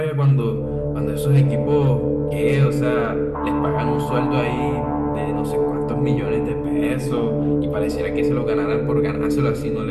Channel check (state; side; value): identical; both; correlation 1.00